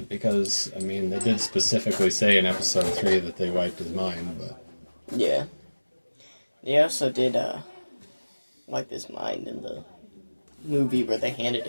because I mean they did specifically say in Episode 3 that they wiped his mind, but yeah, they also did wipe his mind in the movie where they handed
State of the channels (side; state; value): both; inverted; correlation -1.00